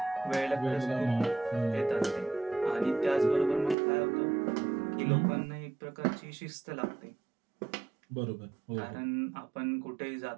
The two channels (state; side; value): drops out; left; at 3.8 s